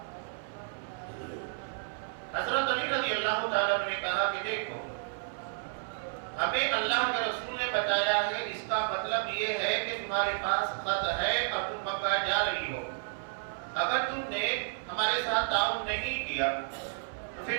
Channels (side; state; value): left; silent; 57 dB below the other